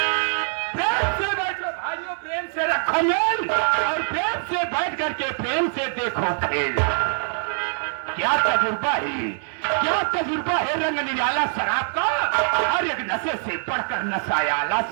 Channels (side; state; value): left; silent; digital silence